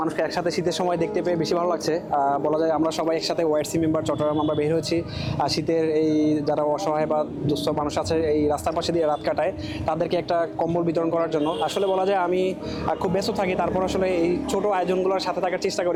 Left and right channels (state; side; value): identical; both; correlation 1.00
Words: মানুষকে একসাথে শীতের সময় দেখতে পেয়ে বেশি ভালো লাগছে। বলা যায় আমরা সবাই একসাথে ওয়াইসি মেম্বার চট্টগ্রাম আমরা বের হয়েছি শীতের এই যারা অসহায় বা দুস্থ মানুষ আছে এই রাস্তার পাশে দিয়ে রাত কাটায় তাদেরকে একটা কম্বল বিতরণ করার জন্য। আসলে বলা যায় আমি খুব ব্যস্ত থাকি, তারপর আসলে এই ছোট আয়োজনগুলোর সাথে থাকার চেষ্টা